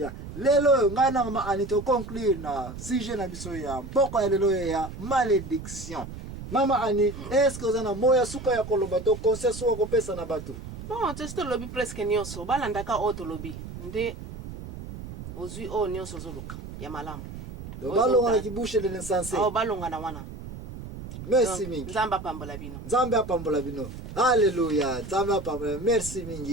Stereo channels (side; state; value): right; noise; rumble, 11 dB below the sound